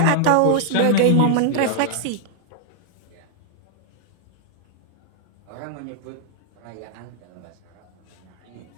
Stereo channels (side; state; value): both; different; correlation -0.01